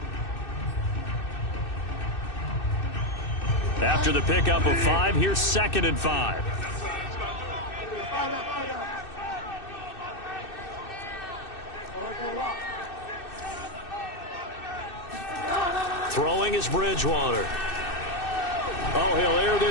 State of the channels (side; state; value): right; late; 2.6 ms